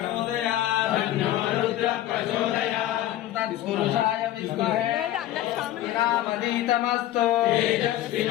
రుద్ర ప్రచోదయా తత్పురుషాయ విద్మహే వినామదీతమస్తు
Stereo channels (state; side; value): quieter; right; 13.7 dB